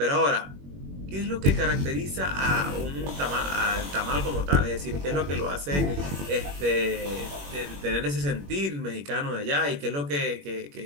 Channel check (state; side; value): late; left; 21 ms